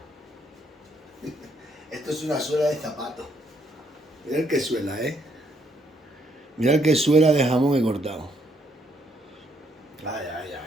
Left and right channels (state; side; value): normal; both; correlation 0.72